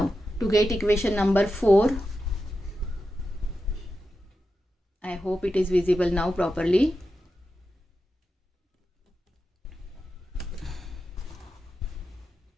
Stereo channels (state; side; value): normal; both; correlation 0.90